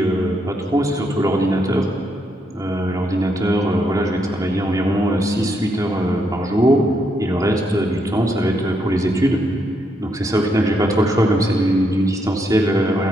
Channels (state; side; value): normal; both; correlation 0.77